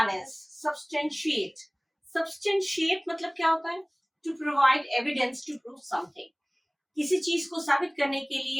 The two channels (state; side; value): identical; both; correlation 1.00